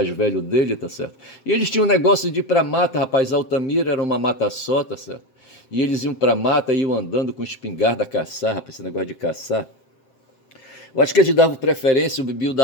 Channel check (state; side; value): late; right; 7.6 ms